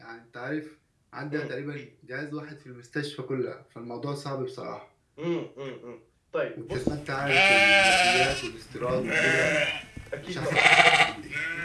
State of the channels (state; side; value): identical; both; correlation 1.00